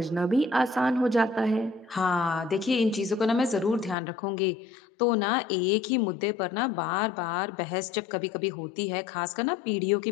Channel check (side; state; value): right; drops out; at 4.0 s